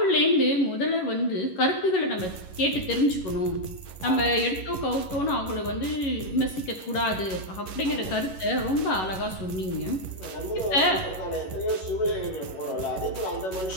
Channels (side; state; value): right; late; 11 ms